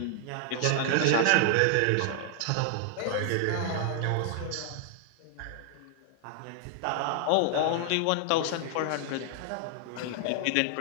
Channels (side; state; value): both; different; correlation 0.00